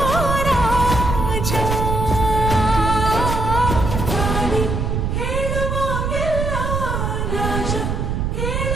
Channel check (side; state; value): right; noise; rumble, 1 dB below the sound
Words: ರಾಜ, ಹೇಳುವಾಗೆಲ್ಲ ರಾಜ